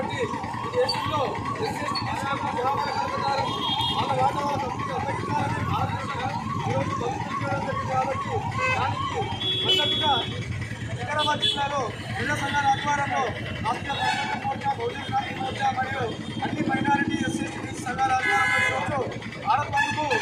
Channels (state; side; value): identical; both; correlation 1.00